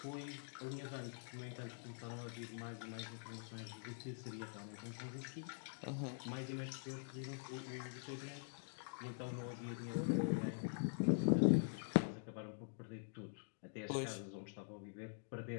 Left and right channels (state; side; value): silent; right; digital silence